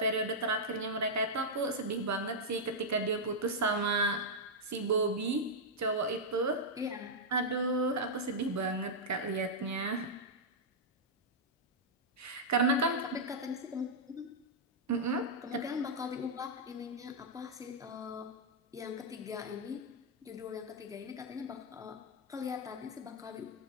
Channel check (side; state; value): both; normal; correlation -0.06